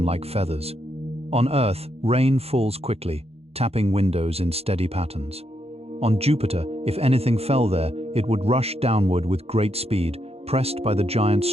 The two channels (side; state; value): left; late; 0.29 ms